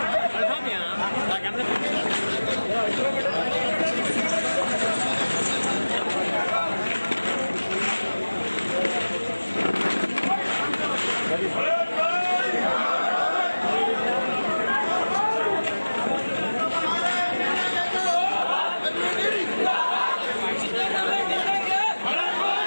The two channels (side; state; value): both; inverted; correlation -1.00